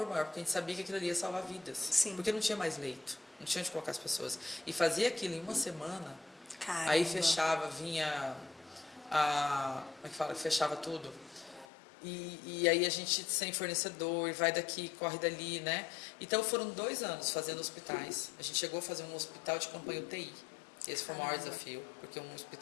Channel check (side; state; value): right; drops out; at 11.7 s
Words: maior, porque a gente sabia que aquilo ali ia salvar vidas. Sim. Porque não tinha mais leito, não tinha onde colocar as pessoas. E fazia aquilo em uma semana, Caramba. aí fechava, vinha como é que fala? Fechava tudo. E aí a gente sem fornecedor, vai daqui, corre dali, né? Então foram 2 anos fazendo hospitais. A gente chegou a fazer um hospital de campanha UTI. Esse foi o maior desafio, porque um